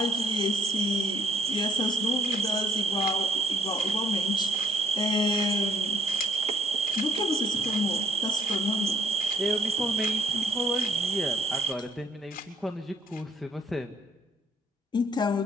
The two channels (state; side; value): normal; both; correlation 0.63